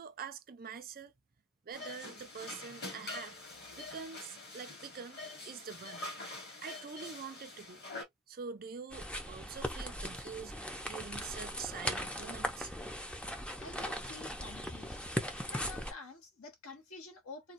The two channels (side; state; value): both; normal; correlation 0.40